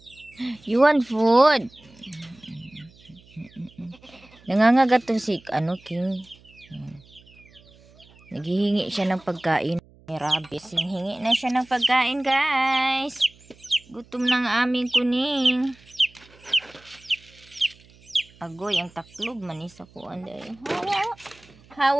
You want food? Nangangagat to si King. Naghihingi siya ng pagkain. May rabbit. Hingi na siya ng pagkain, guys. Gutom ng aming kuning. Agoy, ang taklog manis ako. Hawa.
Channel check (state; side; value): noise; right; hum, 27 dB below the sound